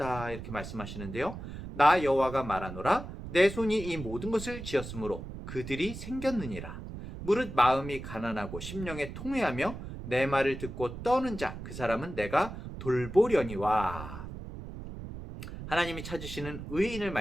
이렇게 말씀하시는데요. 나 여호와가 말하노라, 내 손이 이 모든 것을 지었으므로 그들이 생겼느니라. 무릇 마음이 가난하고 심령에 통회하며 내 말을 듣고 떠는 자, 그 사람은 내가 돌보려니와. 하나님이 찾으시는 의인을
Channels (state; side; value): noise; right; rumble, 10 dB below the sound